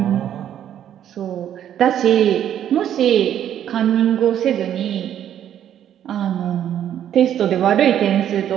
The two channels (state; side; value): quieter; left; 10.4 dB